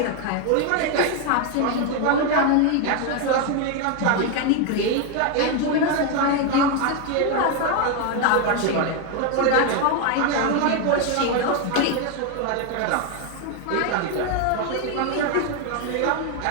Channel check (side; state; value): both; different; correlation 0.01